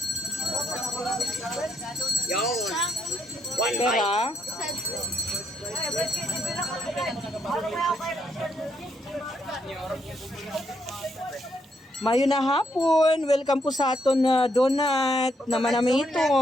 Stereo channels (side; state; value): both; normal; correlation 0.75